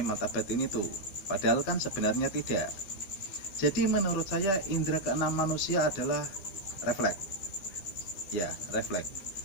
mata batin itu, padahal kan sebenarnya tidak. Jadi menurut saya indera keenam manusia adalah refleks. Ya, refleks.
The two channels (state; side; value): late; right; 12 ms